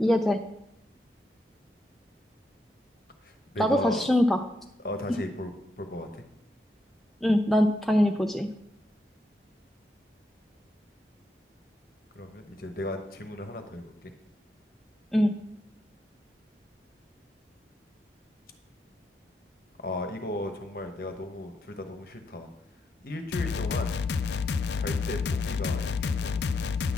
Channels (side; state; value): both; normal; correlation 0.81